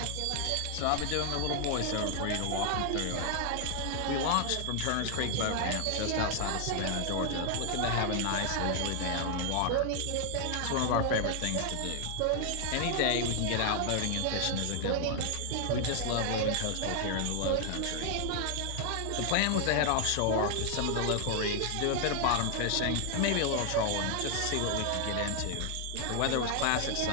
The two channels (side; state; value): both; different; correlation 0.00